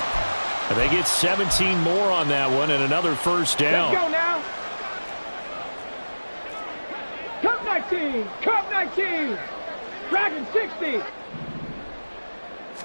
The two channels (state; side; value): inverted; both; correlation -1.00